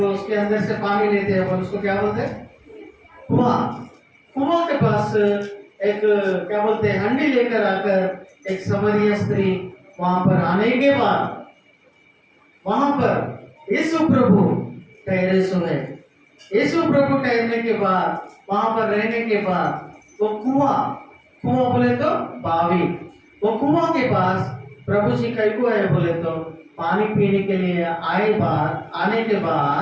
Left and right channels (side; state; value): both; identical; correlation 1.00